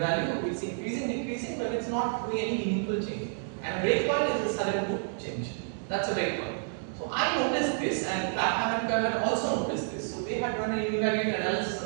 It's increasing, decreasing, but it's not doing any meaningful change. And a breakpoint is a sudden good change. That's a breakpoint. So I noticed this, and Clapham and Kerr also noticed this. So they had run a univariate analysis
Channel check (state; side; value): silent; left; digital silence